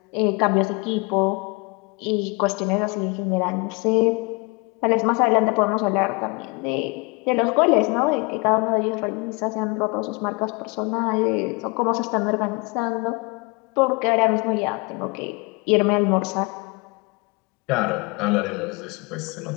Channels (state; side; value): quieter; right; 28.7 dB